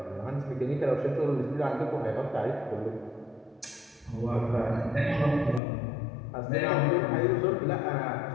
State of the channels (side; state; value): right; drops out; at 5.6 s